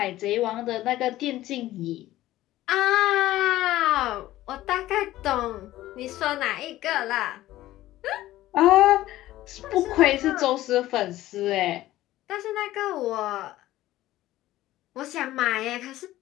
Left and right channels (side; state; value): right; quieter; 15.4 dB